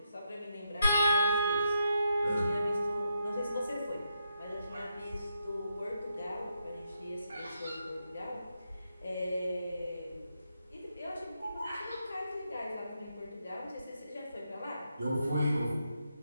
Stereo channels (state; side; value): inverted; both; correlation -0.81